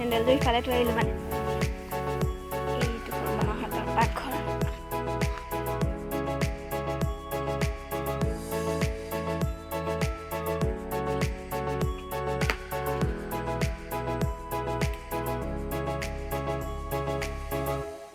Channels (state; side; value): identical; both; correlation 1.00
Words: ইফালে থৈ আহিলোঁ মানে এইটো সৰু মামাহঁতৰ পাকঘৰ